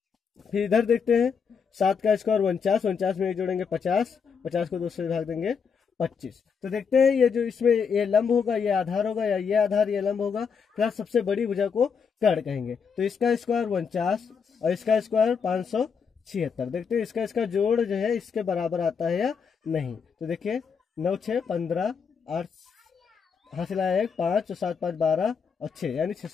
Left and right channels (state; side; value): quieter; right; 6.2 dB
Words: फिर इधर देखते हैं 7 का स्क्वायर 49, 49 में 1 जोड़ेंगे 50, 50 को 2 से भाग देंगे 25। तो देखते हैं ये जो इसमें ये लंब होगा ये आधार होगा, या ये आधार ये लंब होगा, फिर सबसे बड़ी भुजा को कर्ण कहेंगे। तो इसका स्क्वायर 49 और इसका स्क्वायर 576। देखते हैं इसका जोड़ जो है इसके बराबर आता है या नहीं। तो देखिए 9 6 15 8 हासिल आया 1 5 और 7 5 12 और 6 यानी